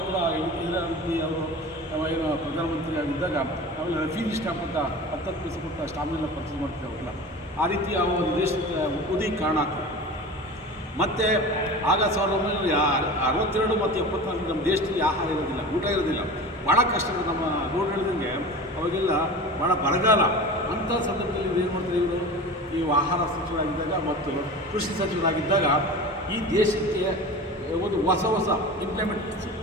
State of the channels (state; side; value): normal; both; correlation 0.34